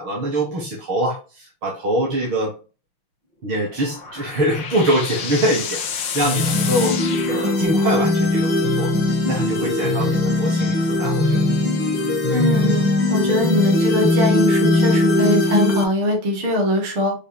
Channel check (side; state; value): left; late; 5.6 ms